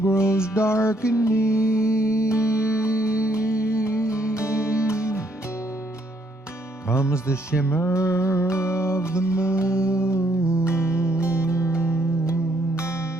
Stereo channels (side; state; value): both; normal; correlation 0.70